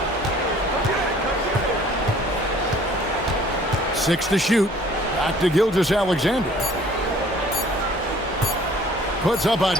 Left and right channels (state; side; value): normal; both; correlation 0.54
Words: Six to shoot. Back to Gilgeous-Alexander. Puts up a